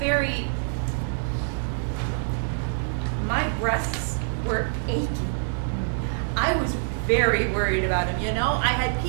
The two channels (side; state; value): left; silent; 61 dB below the other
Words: my breasts were aching. I was very worried about him, I had